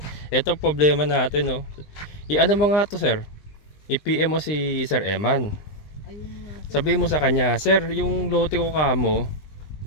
Ito problema natin, no. I-ano mo nga to, sir? I-PM mo si Sir Eman. Ayun nga. Sabihin mo sa kanya, sir, yung lote ko kamo,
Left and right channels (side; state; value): right; late; 20 ms